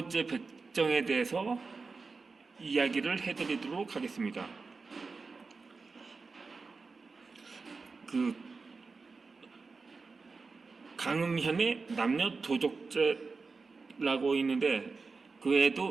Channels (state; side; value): quieter; left; 4.3 dB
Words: 백정에 대해서 이야기를 해드리도록 하겠습니다. 강음현의 남녀 도적죄라고 있는데, 그